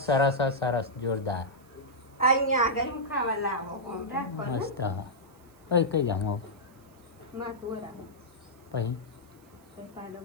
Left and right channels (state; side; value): noise; right; hiss, 30 dB below the sound